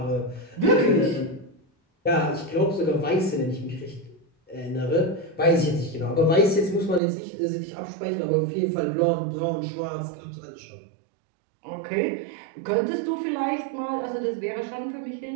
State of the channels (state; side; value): drops out; left; at 7.0 s